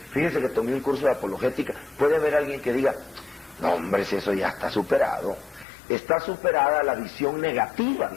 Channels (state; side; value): drops out; right; at 5.7 s